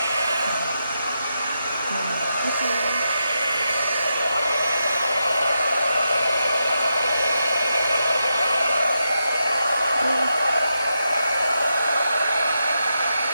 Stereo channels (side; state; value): both; inverted; correlation -0.85